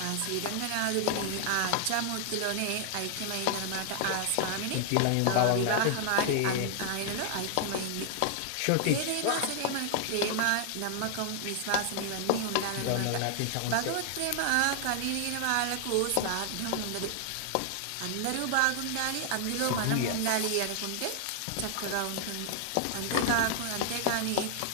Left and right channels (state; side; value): different; both; correlation 0.00